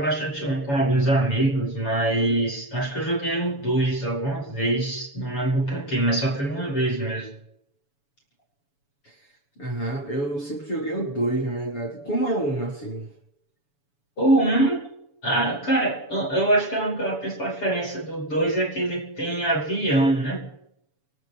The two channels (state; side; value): late; right; 7.0 ms